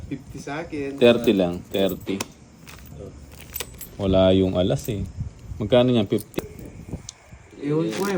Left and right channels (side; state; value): both; identical; correlation 1.00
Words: 50 sa akin. 30 lang, 30. Wala yung alas eh. Magkano yan? 50. Ewan ko eh,